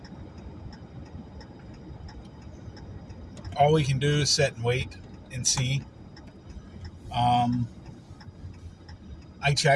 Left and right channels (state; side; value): identical; both; correlation 1.00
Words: we can do is sit and wait and see. I